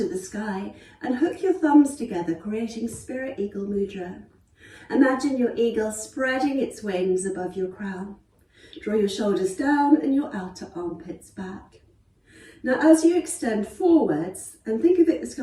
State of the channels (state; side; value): identical; both; correlation 1.00